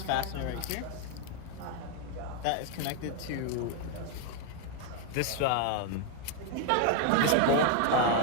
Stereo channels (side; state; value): both; different; correlation 0.00